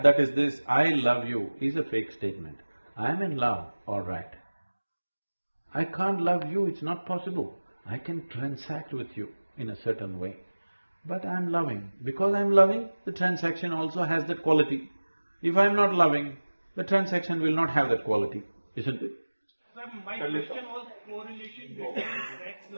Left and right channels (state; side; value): inverted; both; correlation -1.00